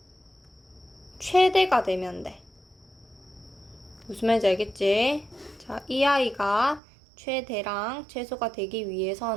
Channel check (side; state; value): left; drops out; at 6.8 s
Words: 최대가 되면 돼. 무슨 말인지 알겠지? 자, 이 아이가 최대랑 최소가 되기